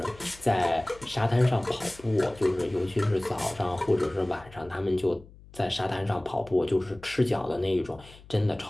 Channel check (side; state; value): left; noise; hum, 22 dB below the sound